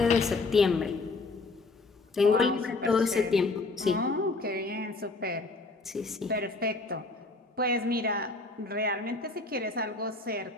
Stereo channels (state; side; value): quieter; right; 3.5 dB